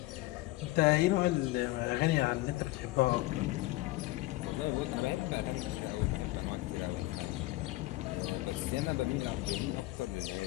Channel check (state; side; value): quieter; right; 19.0 dB